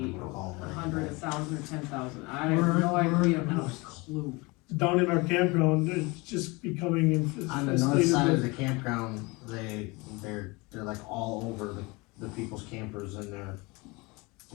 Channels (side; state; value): right; quieter; 25.5 dB